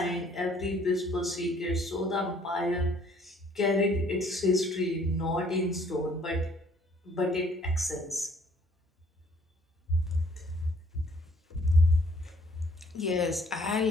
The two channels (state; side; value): normal; both; correlation 0.61